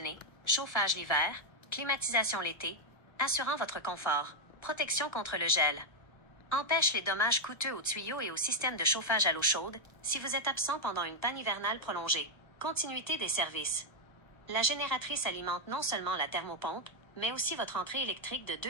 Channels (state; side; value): late; right; 1.3 ms